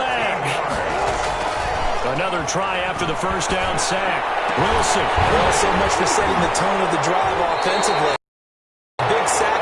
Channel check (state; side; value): identical; both; correlation 1.00